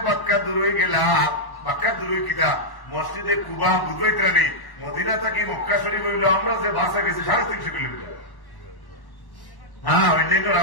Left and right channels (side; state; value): right; late; 1.1 ms